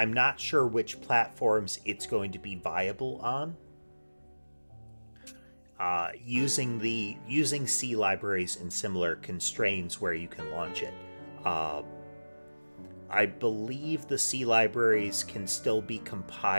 not sure which platforms it's going to be viable on. Using C libraries and similar constraints where you can launch it. I believe the C libraries can still be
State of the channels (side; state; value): both; inverted; correlation -1.00